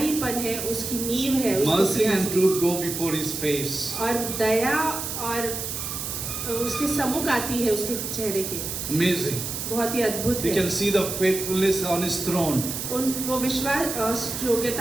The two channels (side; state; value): right; noise; hiss, 5 dB below the sound